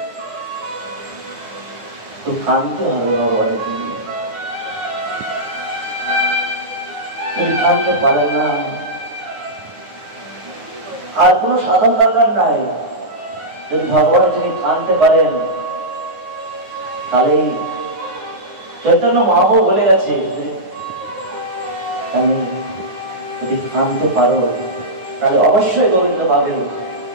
তো কাঁদতে হবে ভগবানের জন্য। যদি কাঁদতে পারে না, আর কোনো সাধন দরকার নাই। যদি ভগবান যিনি কাঁদতে পারেন, তাহলে চৈতন্য মহাপ্রভু বলে গেছে, আমি যদি কাঁদতে পারো তাহলে অবশ্যই গোবিন্দ পাবে।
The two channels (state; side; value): late; left; 9.5 ms